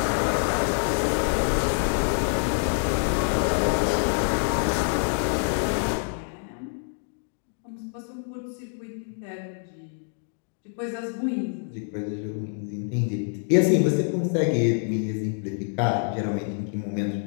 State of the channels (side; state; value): right; silent; 60 dB below the other